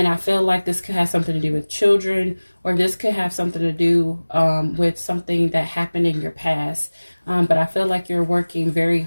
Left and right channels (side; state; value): both; inverted; correlation -1.00